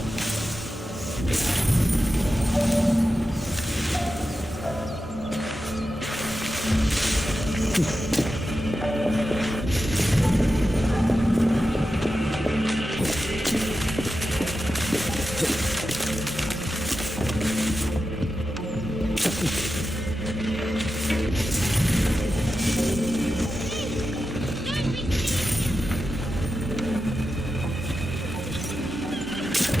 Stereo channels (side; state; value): both; normal; correlation 0.91